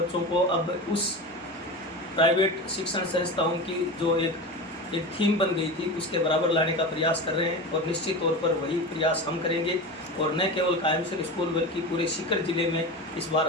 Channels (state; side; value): normal; both; correlation 0.26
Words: को अब उस प्राइवेट शिक्षण संस्थाओं की जो एक एक थीम बन गई थी उसके बराबर लाने का प्रयास कर रहे हैं और निश्चित तौर पर वही प्रयास हम करेंगे। और न केवल कायमसर स्कूल बल्कि पूरे सीकर ज़िले में इस बार